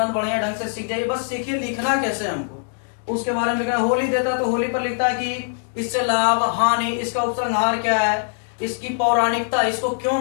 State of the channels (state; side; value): silent; right; 64 dB below the other